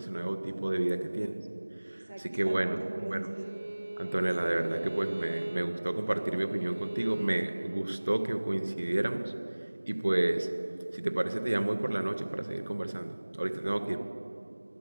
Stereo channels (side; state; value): both; inverted; correlation -1.00